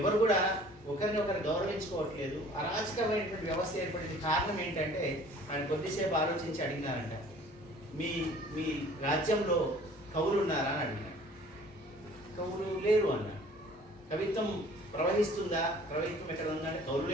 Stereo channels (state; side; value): normal; both; correlation 0.51